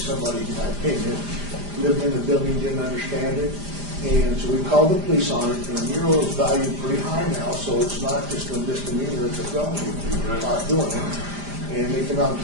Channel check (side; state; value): left; late; 5.0 ms